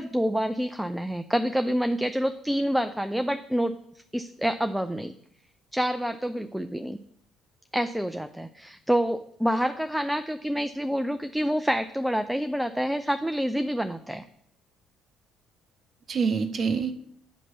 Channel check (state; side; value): normal; both; correlation 0.95